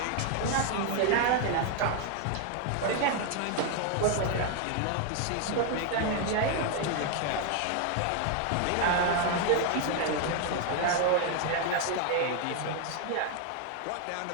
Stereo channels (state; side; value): different; both; correlation 0.00